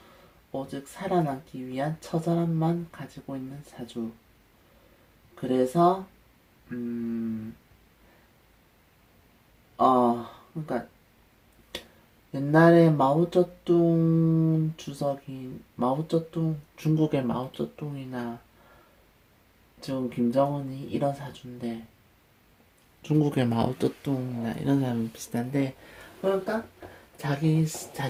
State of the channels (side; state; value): both; identical; correlation 1.00